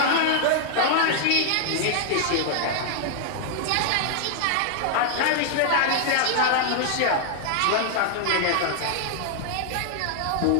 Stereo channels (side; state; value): both; different; correlation 0.00